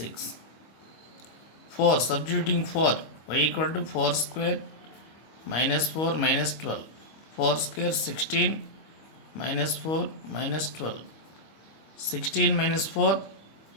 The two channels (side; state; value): right; late; 25 ms